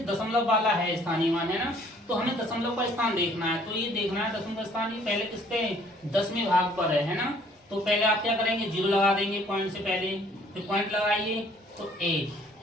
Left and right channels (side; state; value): both; normal; correlation 0.59